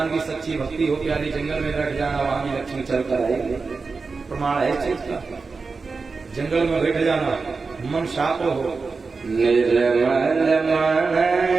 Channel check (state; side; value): quieter; left; 4.4 dB